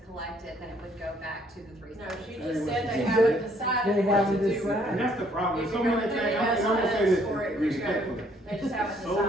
collected, then it would go back to the 3 No, cents. she just said they haven't decided They what haven't to do with decided. And it. that's the problem, If so you're many gonna things, pay I'm gonna say us this for it, respectfully. They just haven't So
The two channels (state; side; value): normal; both; correlation 0.65